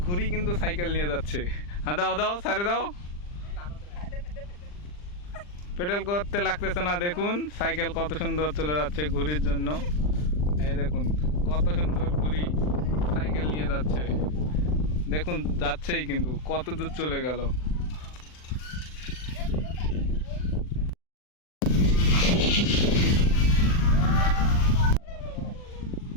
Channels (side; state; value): right; late; 40 ms